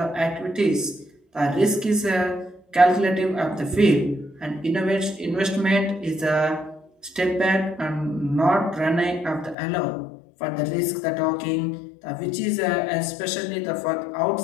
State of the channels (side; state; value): right; drops out; at 9.6 s